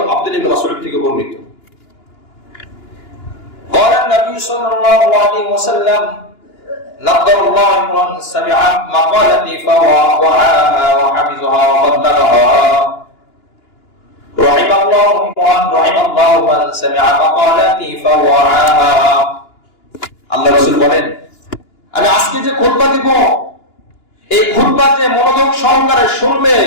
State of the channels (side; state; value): right; late; 2.9 ms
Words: আব্দুল্লাহ ইবনে মাসউদ থেকে বর্ণিত, قال النبي صلى الله عليه وسلم نضر الله امرا سمع مقالتي فوعاها وحفظها وبلغها رحم الله من سمع مقالتي فوعاها। আল্লাহ রাসূল বলেন, আমি আজকে যে খুতবা দিব, এই খুতবা যে মনোযোগ সহকারে শুনবে,